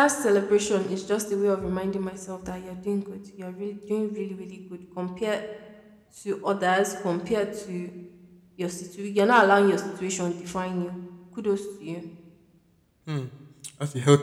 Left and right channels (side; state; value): both; identical; correlation 1.00